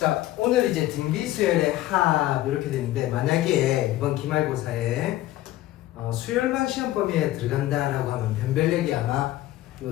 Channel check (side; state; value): right; quieter; 15.2 dB